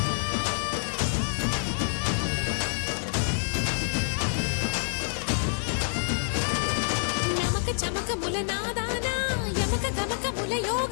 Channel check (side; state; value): right; silent; digital silence